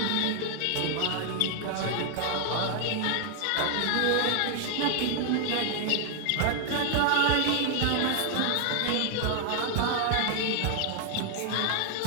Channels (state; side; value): different; both; correlation 0.00